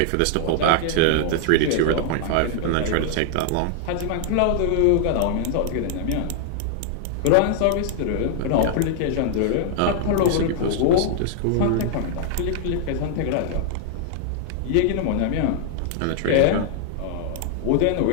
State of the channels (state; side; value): different; both; correlation 0.00